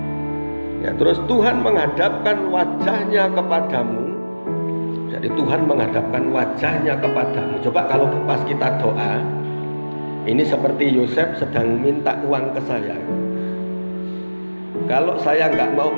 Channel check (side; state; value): both; inverted; correlation -1.00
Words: Ya, terus Tuhan menghadapkan wajahnya kepadamu. Jadi Tuhan menghadapkan wajahnya kepadamu. Coba kalau pas kita doa, ini seperti Yosef sedang minta uang ke saya. Kalau saya nggak mau